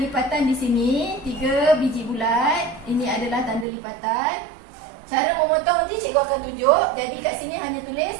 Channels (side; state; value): left; drops out; at 3.7 s